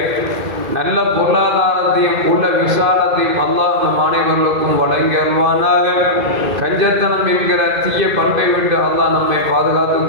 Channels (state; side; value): late; left; 2.5 ms